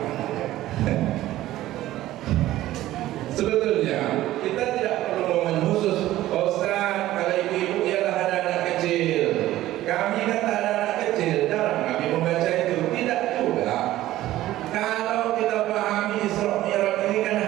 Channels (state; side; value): quieter; left; 15.0 dB